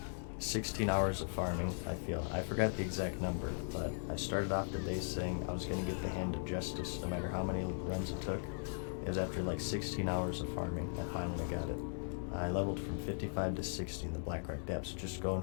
16 hours of farming, I feel. I forgot the exact number, but I started off the day saying I was going to get the Hand of Justice no matter how many runs it took. It was after like 16 hours of farming, I finally got it. I leveled from 55 to 60 in the Blackrock Depths, just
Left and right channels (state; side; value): silent; right; digital silence